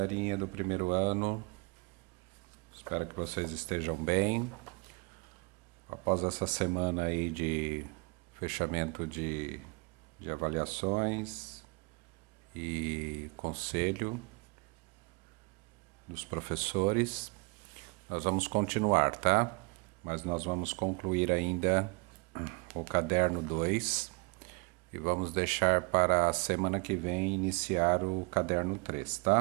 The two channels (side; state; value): left; quieter; 30.2 dB